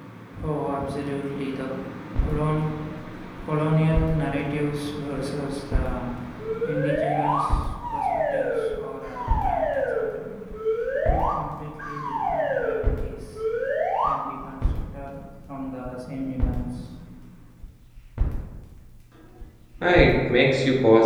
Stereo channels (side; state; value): both; identical; correlation 1.00